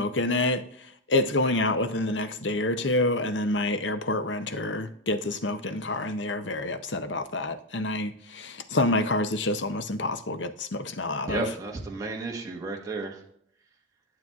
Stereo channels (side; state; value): both; normal; correlation 0.04